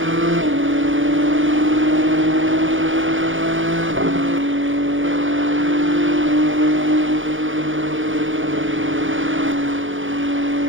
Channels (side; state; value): left; late; 0.57 ms